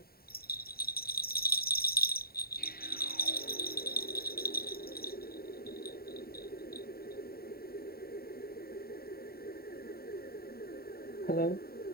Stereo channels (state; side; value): late; right; 0.44 ms